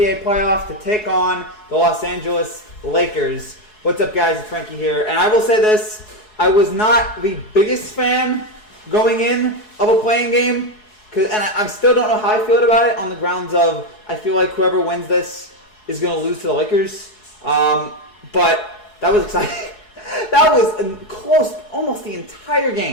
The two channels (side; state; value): right; late; 4.7 ms